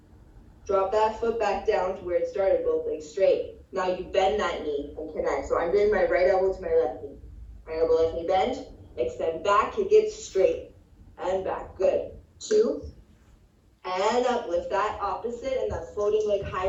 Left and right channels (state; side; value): identical; both; correlation 1.00